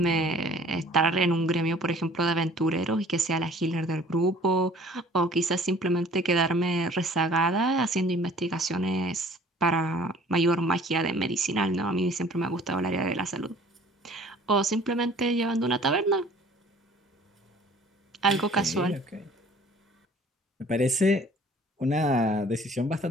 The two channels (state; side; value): normal; both; correlation 0.52